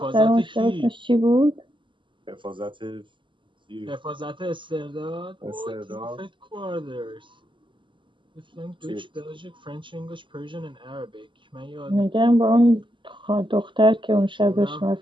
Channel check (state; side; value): late; left; 0.24 ms